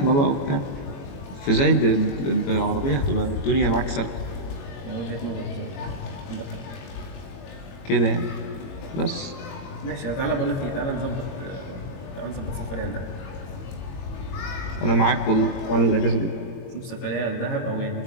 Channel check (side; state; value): right; late; 22 ms